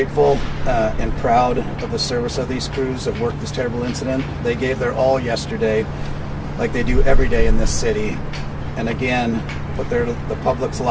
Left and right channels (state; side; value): identical; both; correlation 1.00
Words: and proud of the service of these crews that worked this terrible incident. They gave their all yesterday, like they do every day in this city, and again, put the public's